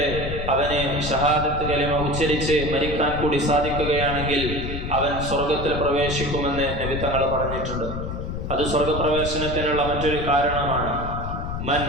അവന് ഷഹാദത്ത് കലിമ ഉച്ചരിച്ച് മരിക്കാൻ കൂടി സാധിക്കുകയാണെങ്കിൽ അവൻ സ്വർഗത്തിൽ പ്രവേശിക്കുമെന്ന് നബി തങ്ങൾ പറഞ്ഞിട്ടുണ്ട്. അത് സ്വർഗപ്രവേശനത്തിനുള്ള മറ്റൊരു കാരണമാണ്. മൻ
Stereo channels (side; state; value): left; noise; rumble, 5 dB below the sound